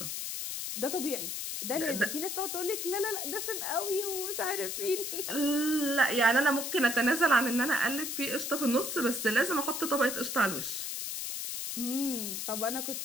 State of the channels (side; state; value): left; noise; hiss, 4 dB below the sound